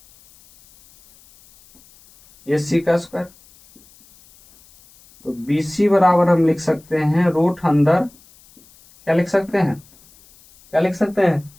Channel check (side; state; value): left; noise; hiss, 28 dB below the sound